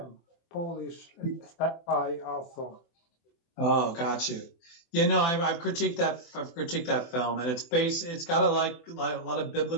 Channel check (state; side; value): late; right; 24 ms